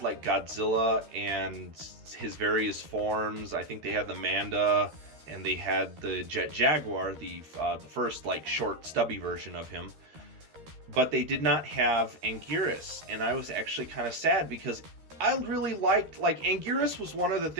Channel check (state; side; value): late; left; 13 ms